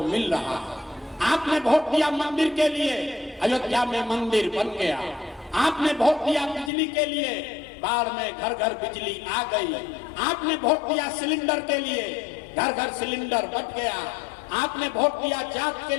मिल रहा है। आपने वोट दिया मंदिर के लिए, अयोध्या में मंदिर बन गया। आपने वोट दिया बिजली के लिए, बाढ़ में घर घर बिजली आ गई। आपने वोट दिया सिलेंडर के लिए, घर घर सिलेंडर बट गया। आपने वोट दिया जात के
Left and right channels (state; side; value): drops out; right; at 6.7 s